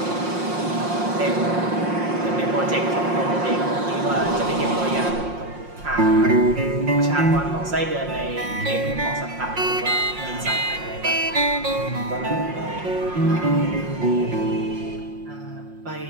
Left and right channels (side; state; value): left; late; 5.6 ms